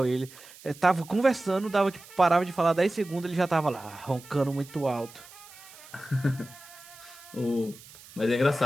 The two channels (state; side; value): noise; right; hiss, 20 dB below the sound